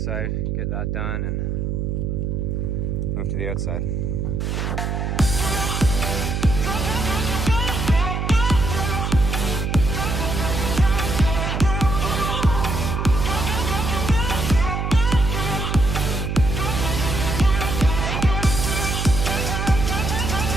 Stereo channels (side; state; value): right; noise; hum, 1 dB below the sound